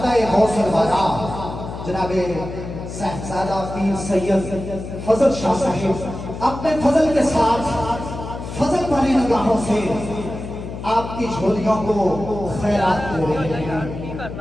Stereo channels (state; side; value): noise; left; hum, 9 dB below the sound